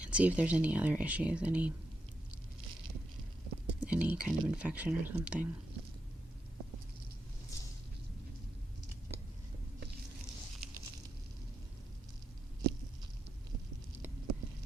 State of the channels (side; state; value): both; normal; correlation 0.85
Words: and see if there's any other issues, any kind of infection or something.